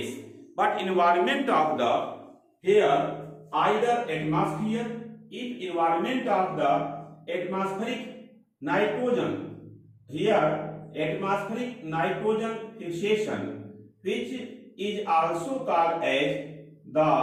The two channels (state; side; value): identical; both; correlation 1.00